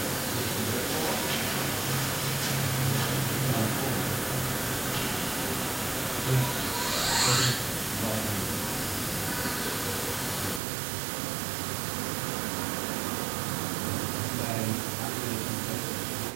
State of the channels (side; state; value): left; drops out; at 10.6 s